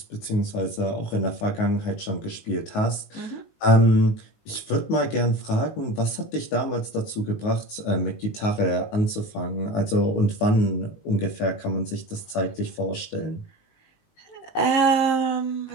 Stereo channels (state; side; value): late; right; 19 ms